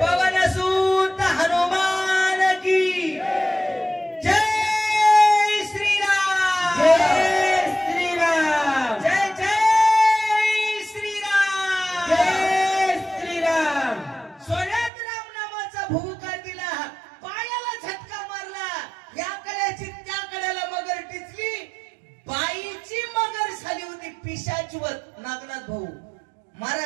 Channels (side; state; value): left; drops out; at 14.9 s